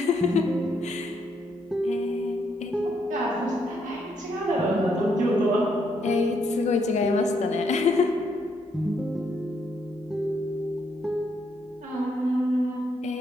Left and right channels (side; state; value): both; normal; correlation 0.75